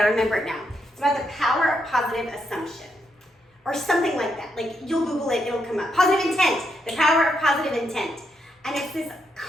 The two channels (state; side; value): normal; both; correlation 0.79